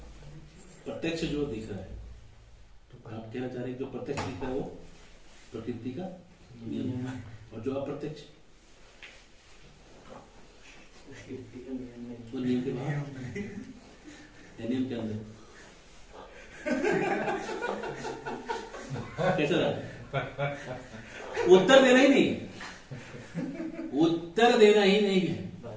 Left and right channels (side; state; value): both; identical; correlation 1.00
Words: प्रत्यक्ष जो दिख रहा है, तो आप कहना चाह रहे हैं जो प्रत्यक्ष दिख रहा है वो प्रकृति का नियम है, और जो अप्रत्यक्ष प्रकृति का नियम नहीं। वो नियम के बाहर, नियम के अंदर कैसा रहा? उत्तर देना ही नहीं, उत्तर देना ही नहीं है,